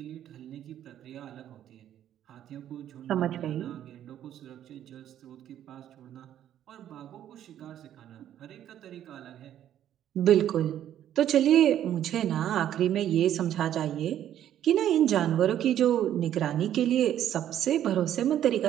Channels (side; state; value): left; quieter; 11.1 dB